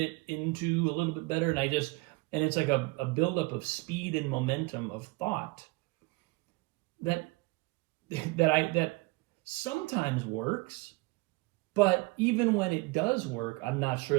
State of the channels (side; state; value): left; quieter; 23.8 dB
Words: into a little bit better. And it's like a buildup of speed and momentum of thought that sometimes works, but even when it does work, I'm not